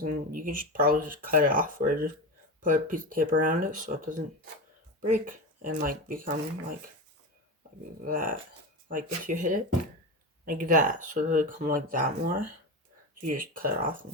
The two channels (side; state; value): both; normal; correlation 0.20